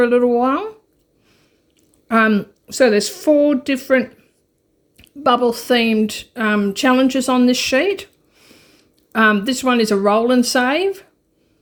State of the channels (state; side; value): identical; both; correlation 1.00